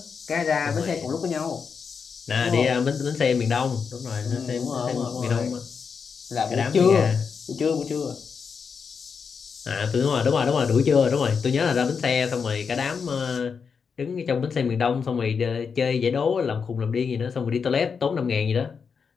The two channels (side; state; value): right; quieter; 5.9 dB